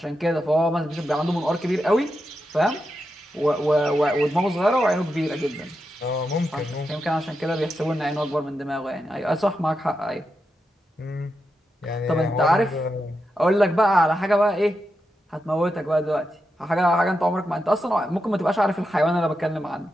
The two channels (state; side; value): normal; both; correlation 0.87